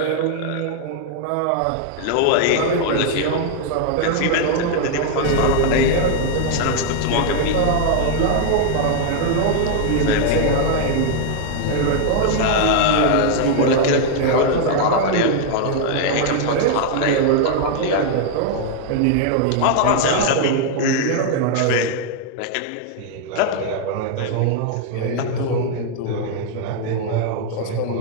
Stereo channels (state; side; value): different; both; correlation 0.00